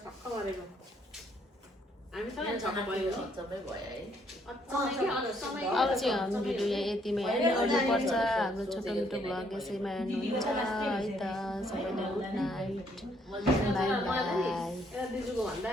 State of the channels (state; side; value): normal; both; correlation 0.69